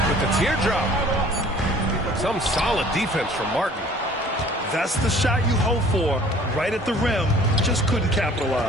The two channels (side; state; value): both; normal; correlation 0.51